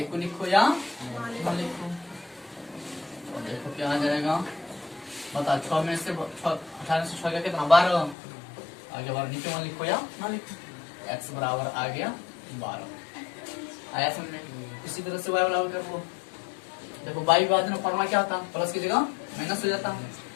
को लिखो या ना लिखो, देखो क्या आ जाएगा, बता 6 में से 18 से 6 गया कितना 12, आगे 12 नीचे 1 लिखो या ना लिखो, x बराबर आ गया 12, आया समझ में। इसी तरह से y बराबर कर लो, देखो y विभाजन फॉर्मूला क्या होता, प्लस की जगह माइनस हो जाता,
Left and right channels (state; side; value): drops out; right; at 8.2 s